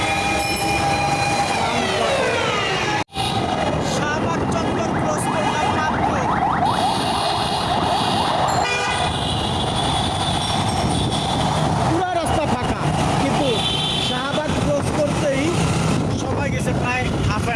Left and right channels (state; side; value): identical; both; correlation 1.00